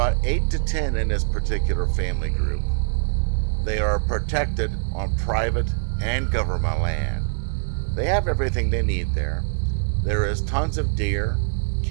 8 to 10 in this particular family group. They are protected on private and government land. They have everything they need there. There is tons of deer,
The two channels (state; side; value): silent; left; 63 dB below the other